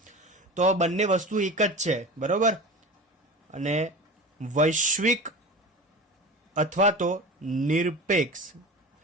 તો બંને વસ્તુ એક જ છે. બરાબર, અને વૈશ્વિક અથવા તો નિરપેક્ષ,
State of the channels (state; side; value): normal; both; correlation 0.32